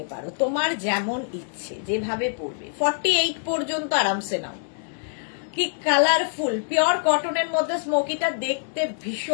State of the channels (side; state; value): right; silent; digital silence